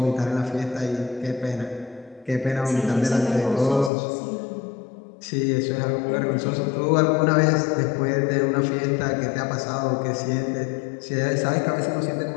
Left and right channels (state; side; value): drops out; right; at 3.9 s